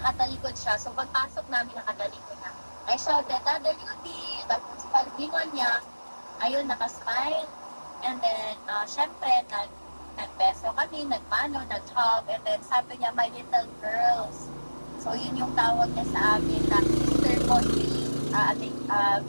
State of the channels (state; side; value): inverted; both; correlation -1.00